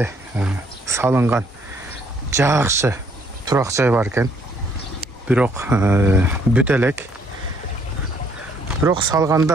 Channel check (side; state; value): both; normal; correlation 0.66